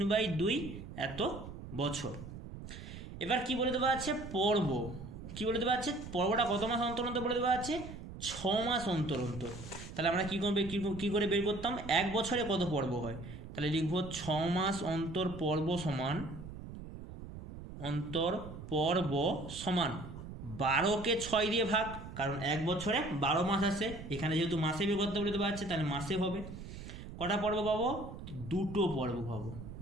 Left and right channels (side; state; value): right; noise; rumble, 11 dB below the sound